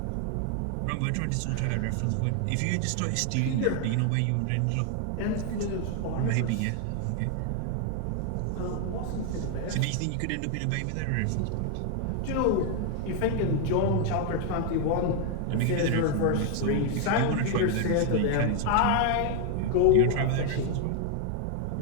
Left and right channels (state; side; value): different; both; correlation 0.00